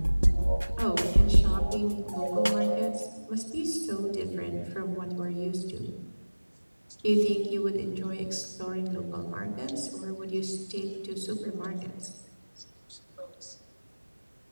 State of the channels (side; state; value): both; inverted; correlation -1.00